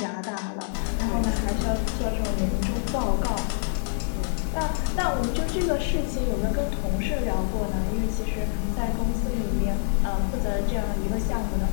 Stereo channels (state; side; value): silent; right; digital silence